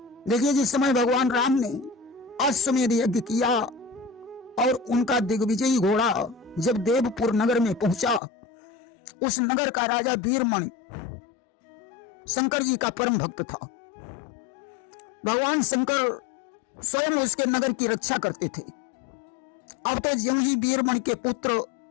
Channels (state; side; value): drops out; right; at 8.2 s